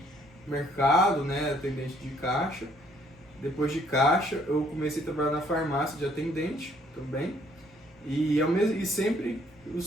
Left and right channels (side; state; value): both; normal; correlation 0.64